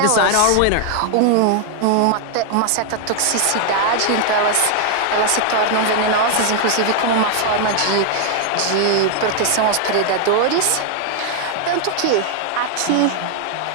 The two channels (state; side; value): different; both; correlation 0.00